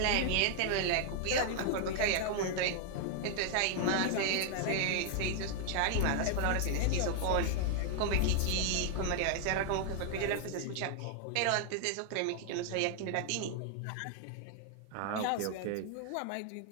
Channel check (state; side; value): different; both; correlation 0.00